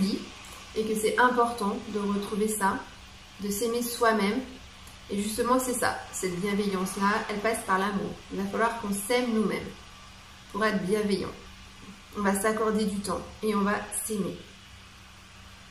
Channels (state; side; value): identical; both; correlation 1.00